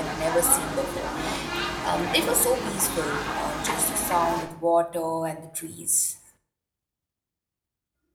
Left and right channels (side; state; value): both; identical; correlation 1.00